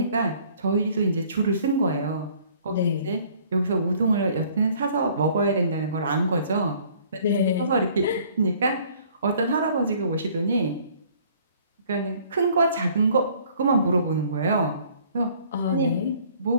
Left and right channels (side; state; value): both; inverted; correlation -0.57